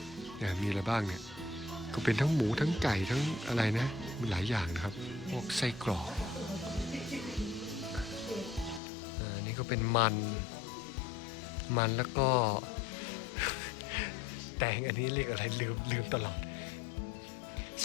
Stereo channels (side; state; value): right; drops out; at 8.8 s